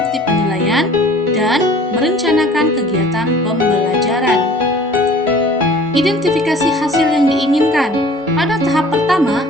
penilaian, dan merencanakan kegiatan pembelajaran. Identifikasi hasil yang diinginkan. Pada tahap pertama,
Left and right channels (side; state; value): both; normal; correlation 0.49